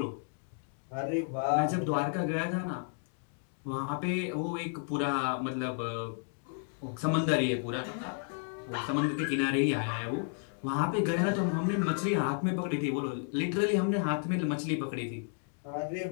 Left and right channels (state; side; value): silent; right; 56 dB below the other